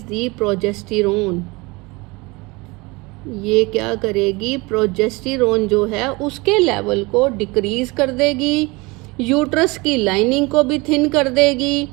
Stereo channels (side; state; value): left; quieter; 24.8 dB